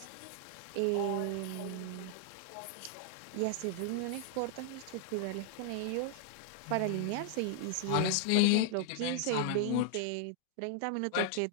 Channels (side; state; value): both; different; correlation 0.00